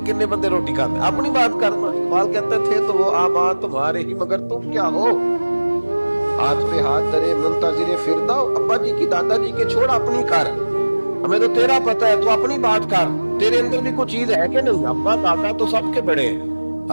کنے بندے روٹی کھاتے، اپنی بات کرنا۔ اقبال کہتے تھے تو وہ آباد تمہارے ہی مگر تم کیا ہو، ہاتھ پہ ہاتھ درے منتظر فردہ، ابا جی کی دادا جی کے چھوڑ اپنی کر، ہمیں تو تیرا پتہ ہے تو اپنی بات کر، تیرے اندر بھی کوئی چیز ہے کہ نہیں؟ ابا دادا تو سب کے بڑے ہیں،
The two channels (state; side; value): inverted; both; correlation -1.00